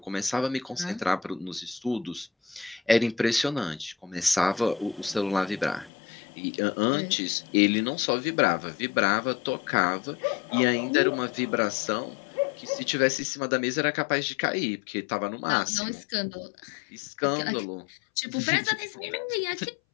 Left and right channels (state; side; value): drops out; right; at 5.9 s